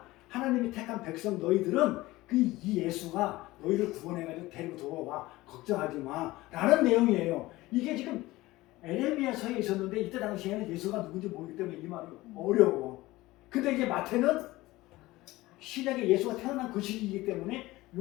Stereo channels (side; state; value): right; quieter; 18.8 dB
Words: 하나님이 택한 백성 너희들은 이 예수가 너희를 구원해가지고 데리고 돌아와. 걱정하지 마. 라는 내용이에요. 이게 지금 에레미야서에 있었는데 이때 당시에는 예수가 누군지 모르기 때문에 이 말이 어려워. 근데 이제 마태는 신약에 예수가 태어난 그 시기이기 때문에